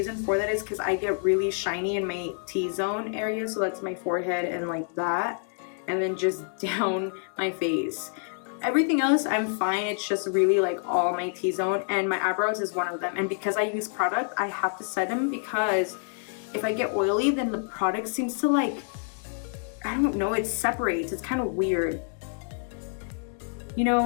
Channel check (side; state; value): right; silent; 60 dB below the other